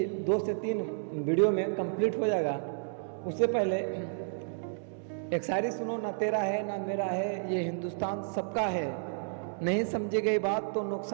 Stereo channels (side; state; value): left; silent; digital silence